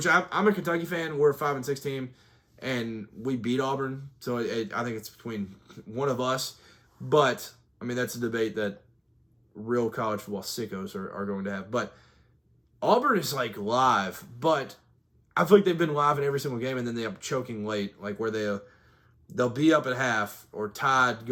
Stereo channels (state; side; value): identical; both; correlation 1.00